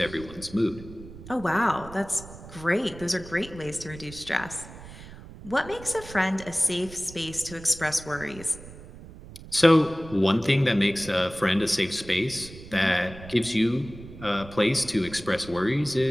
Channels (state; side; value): noise; right; rumble, 16 dB below the sound